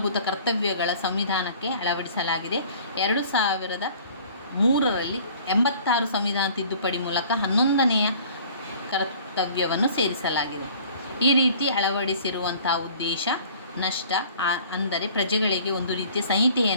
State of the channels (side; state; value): both; inverted; correlation -0.50